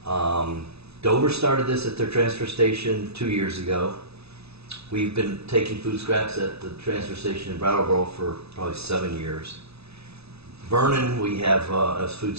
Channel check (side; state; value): left; late; 0.79 ms